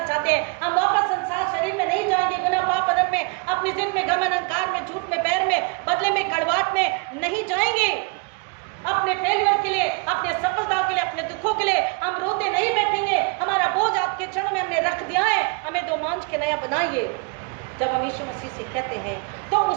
हैं, हम वापस संसार शरीर में नहीं जाएंगे, गुनाह पाप अदम में, अपनी जिद में, गमन अहंकार में, झूठ में, बैर में, बदले में, कड़वाहट में नहीं जाएंगे। अपने फेलियर के लिए, अपने सफलताओं के लिए, अपने दुखों के लिए हम रोते नहीं बैठेंगे। हमारा बोझ आपके चरणों में हमने रख दिया है, हमें दो मांझ के नया बनाइए। जब हम यीशु मसीह से कहते हैं तो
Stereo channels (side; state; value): left; quieter; 32.7 dB